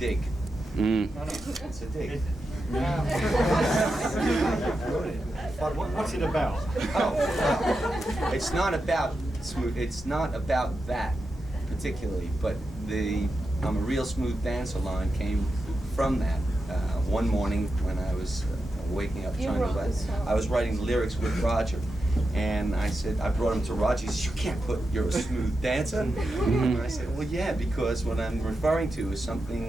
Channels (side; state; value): both; normal; correlation 0.89